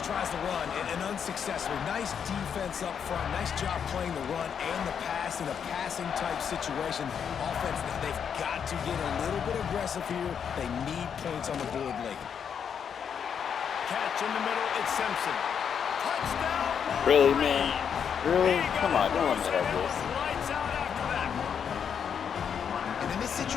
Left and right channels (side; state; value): right; quieter; 7.5 dB